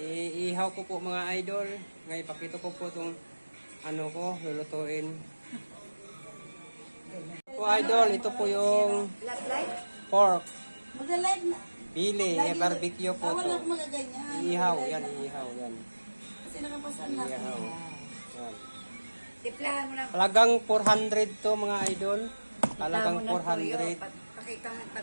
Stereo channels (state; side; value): inverted; both; correlation -1.00